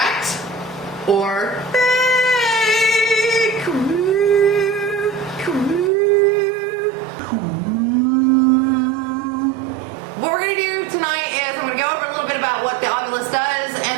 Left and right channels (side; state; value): left; drops out; at 5.9 s